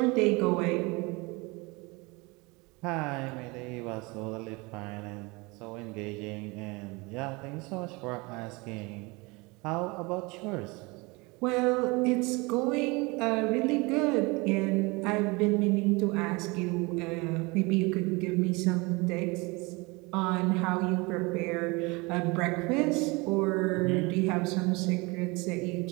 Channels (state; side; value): quieter; left; 25.9 dB